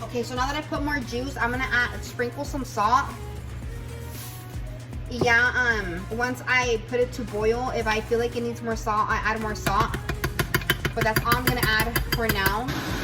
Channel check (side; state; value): both; identical; correlation 1.00